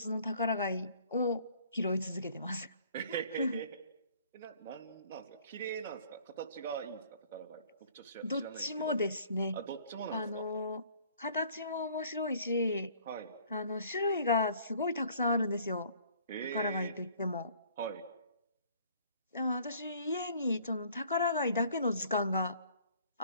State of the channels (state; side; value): inverted; both; correlation -0.56